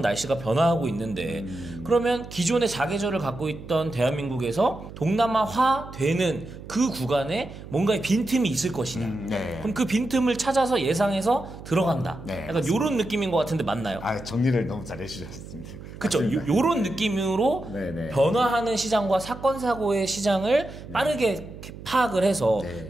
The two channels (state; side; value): noise; right; hum, 14 dB below the sound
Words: 날씨가 변화하고 있는데 그러면 기존의 사계절을 갖고 있던 대한민국에서 동남아화 되는 그 구간에 뭔가의 빈틈이 있을 것이냐. 네. 그럼 그 빈틈을 찾아서 예상해서 들어간다. 네, 약간 이런 느낌인 것 같은데 맞나요? 정리를 너무 잘 해주셨습니다. 그렇죠. 요런 느낌으로 네네. 변화하는 시장과 사건 사고의 시장을 빠르게 파악을 해서 네.